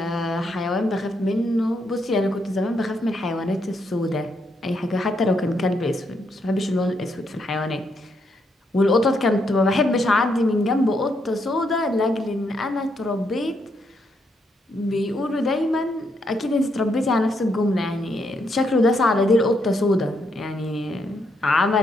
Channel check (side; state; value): both; normal; correlation 0.77